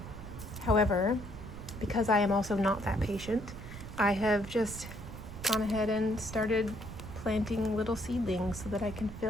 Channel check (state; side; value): noise; right; rumble, 12 dB below the sound